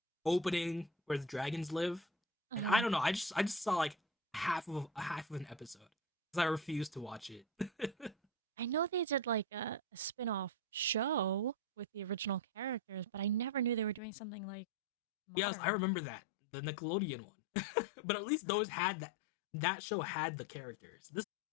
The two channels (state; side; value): drops out; right; at 14.0 s